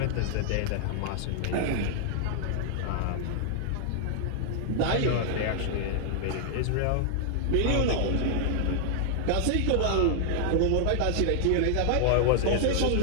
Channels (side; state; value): both; different; correlation -0.01